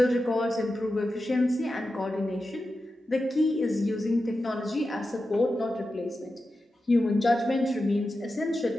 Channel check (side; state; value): both; normal; correlation 0.91